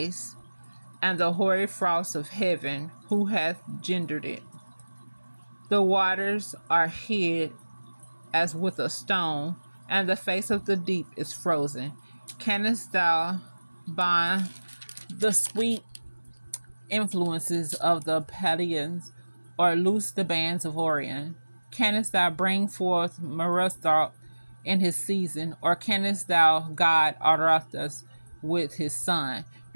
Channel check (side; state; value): both; inverted; correlation -1.00